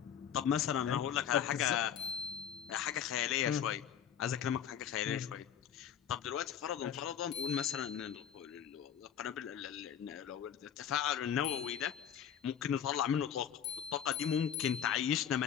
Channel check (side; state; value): right; quieter; 9.0 dB